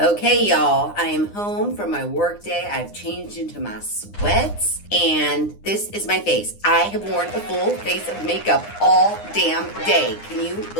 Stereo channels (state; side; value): late; right; 9.8 ms